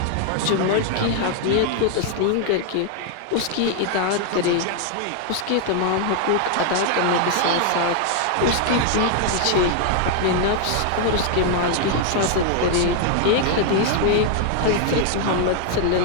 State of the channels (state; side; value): different; both; correlation 0.00